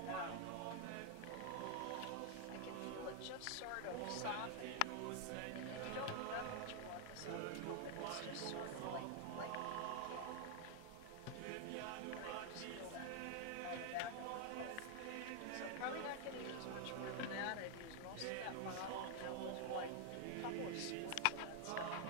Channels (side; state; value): both; different; correlation 0.00